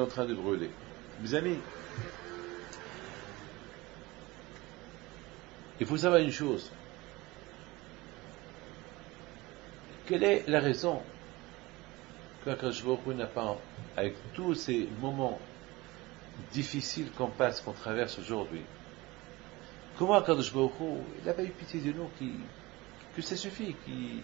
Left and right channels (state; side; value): quieter; left; 21.6 dB